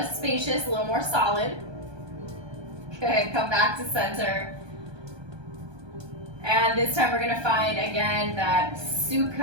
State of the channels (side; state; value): left; late; 1.2 ms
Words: spacious, a little more solid. Good, come back to center. And this time we're gonna find, again, that